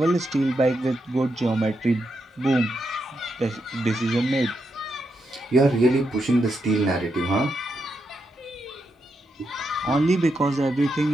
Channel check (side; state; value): both; normal; correlation 0.83